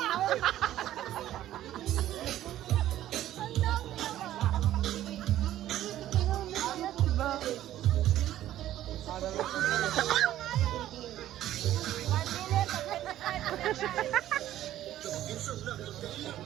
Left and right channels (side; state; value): left; quieter; 13.1 dB